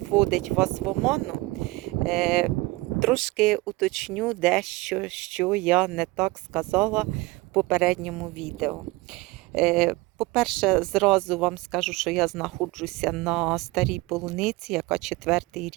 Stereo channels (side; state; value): left; quieter; 21.7 dB